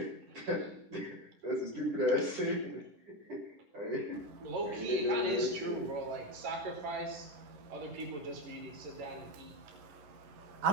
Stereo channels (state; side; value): late; left; 10 ms